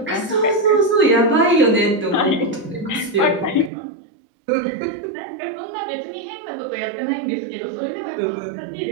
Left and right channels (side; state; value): left; drops out; at 3.7 s